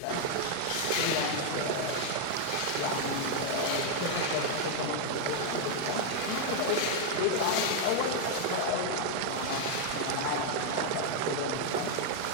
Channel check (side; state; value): both; different; correlation 0.00